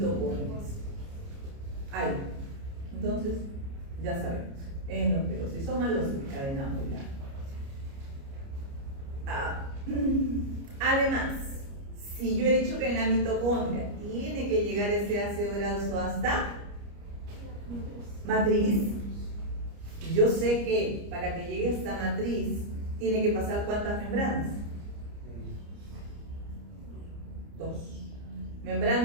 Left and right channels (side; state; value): left; late; 29 ms